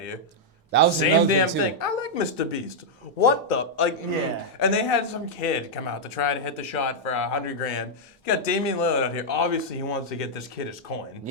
That was Same another damn thing, thing. too. I like Mr. Beast. What the Yeah. And they had some kid come out to try to hit the shot for $100 grand. You got Damian Lillard out here. Obviously, he wants to get this kid his coin.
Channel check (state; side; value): normal; both; correlation -0.05